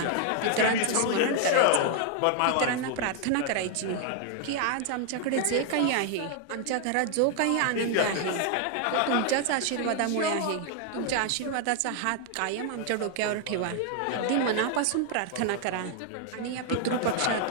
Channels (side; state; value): both; different; correlation 0.00